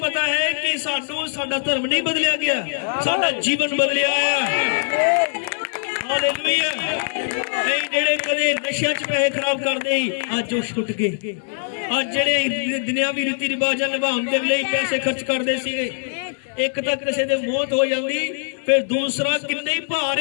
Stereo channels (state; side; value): silent; right; digital silence